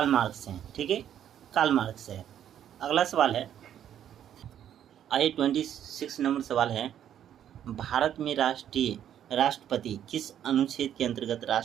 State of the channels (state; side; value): quieter; left; 10.2 dB